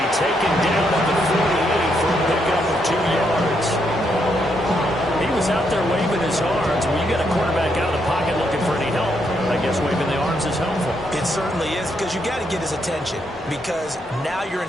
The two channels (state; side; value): normal; both; correlation 0.77